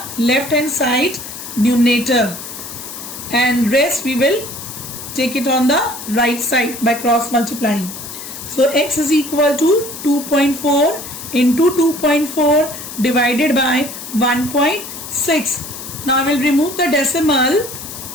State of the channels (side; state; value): left; noise; hiss, 10 dB below the sound